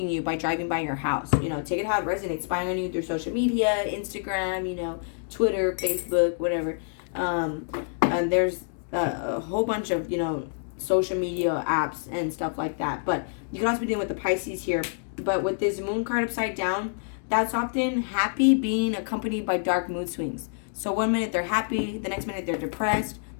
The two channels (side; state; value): right; silent; digital silence